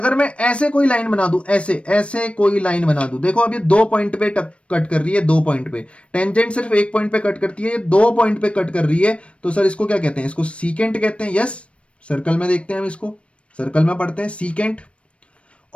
मैं ऐसे कोई लाइन बना दूं, ऐसे ऐसे कोई लाइन बना दूं, देखो अब ये 2 पॉइंट पे कट कर रही है, 2 पॉइंट पे। टेंजेंट सिर्फ 1 पॉइंट पे कट करती है, ये 2 पॉइंट पे कट कर रही है, तो सर इसको क्या कहते हैं? इसको सीकेंट कहते हैं। यस, सर्कल में देखते हैं हम इसको, सर्कल में पढ़ते हैं सीकेंट।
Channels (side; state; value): right; late; 0.061 ms